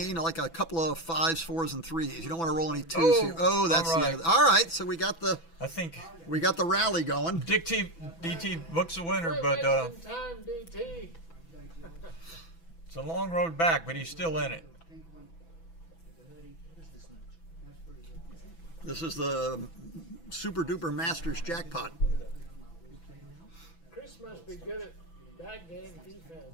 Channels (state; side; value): late; right; 6.0 ms